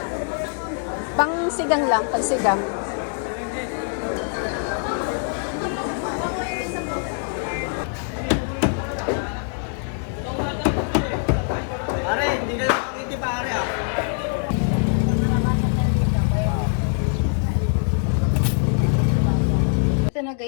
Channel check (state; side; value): silent; right; 55 dB below the other